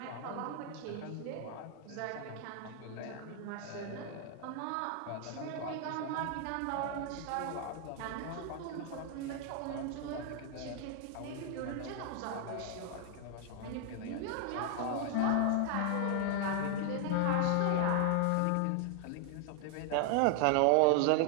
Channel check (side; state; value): both; different; correlation 0.00